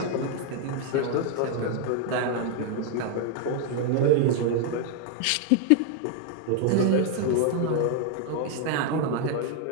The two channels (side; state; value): both; different; correlation 0.00